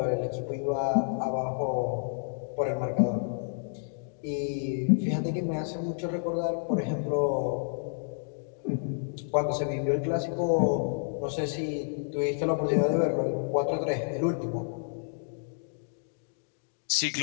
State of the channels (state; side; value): silent; right; digital silence